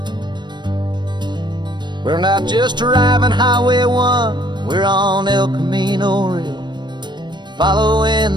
We're not just driving Highway 1, we're on El Camino Real,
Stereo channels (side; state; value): left; late; 0.22 ms